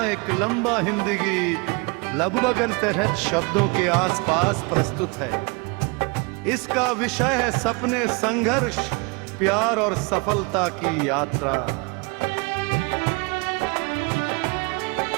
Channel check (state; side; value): quieter; left; 29.7 dB